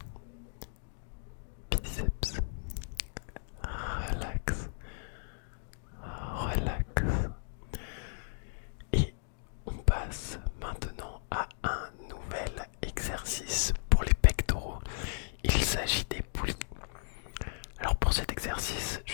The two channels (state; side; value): silent; right; digital silence